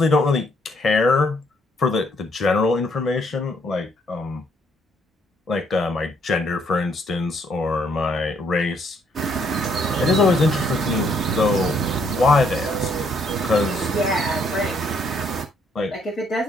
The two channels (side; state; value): both; normal; correlation 0.69